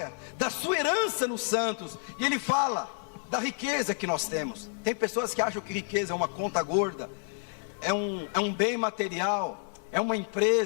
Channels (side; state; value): right; silent; 58 dB below the other